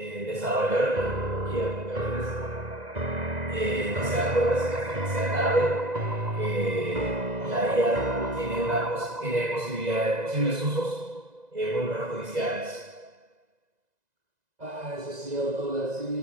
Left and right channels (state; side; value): late; left; 2.0 ms